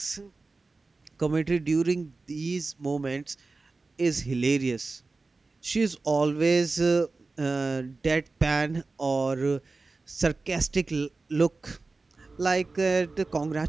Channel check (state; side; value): quieter; left; 3.7 dB